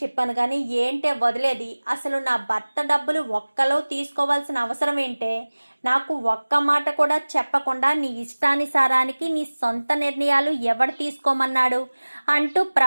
చెప్పాను, కానీ ఏంటే వదిలేది, అసలు నా భర్త డబ్బులు ఒక్కలో తీసుకోవాల్సిన అవసరం ఏంటే, నాకు ఒక్క మాట కూడా చెప్పకుండా నీ ఇష్టానుసారానికి నీ సొంత నిర్ణయాలు ఎవడు తీసుకోమన్నాడు అంటూ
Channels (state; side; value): inverted; both; correlation -1.00